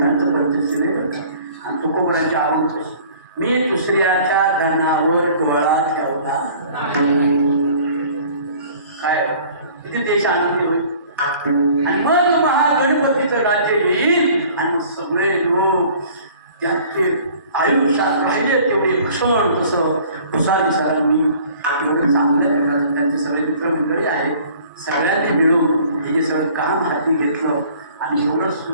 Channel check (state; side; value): inverted; both; correlation -0.51